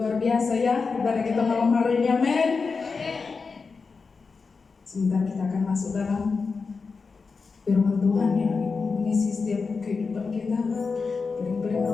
biasa ya ibadah kita malam hari ini, amin. Sebentar kita akan masuk dalam firman Tuhan yang mengisi setiap kehidupan kita, piring-piring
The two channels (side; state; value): right; quieter; 4.7 dB